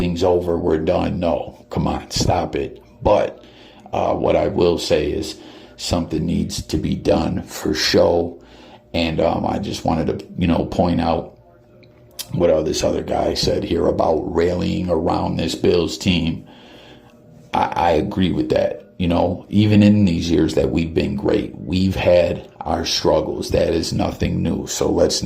over, we're done. No, come on, stop it. But what I will say is something needs to be done for show. And I just wanted to, you know, point out what this other guy said here about rallying around this Bills team. I agree with that. You know, even in these years that we've been great, we've had our struggles. That is nothing new. So let's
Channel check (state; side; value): identical; both; correlation 1.00